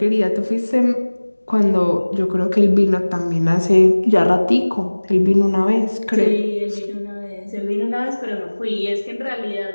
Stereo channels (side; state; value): both; inverted; correlation -1.00